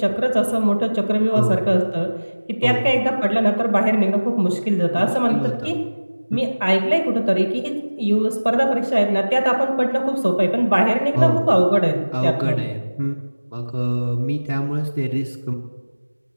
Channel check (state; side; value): inverted; both; correlation -1.00